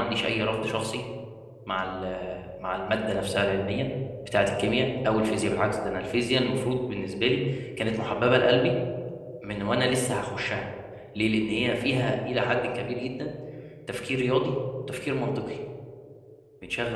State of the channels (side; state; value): both; identical; correlation 1.00